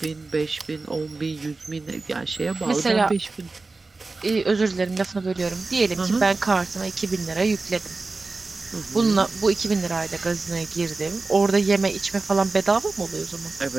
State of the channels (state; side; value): quieter; left; 3.7 dB